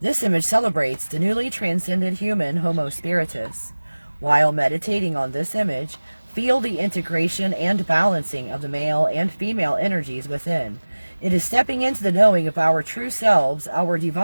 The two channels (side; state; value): both; inverted; correlation -1.00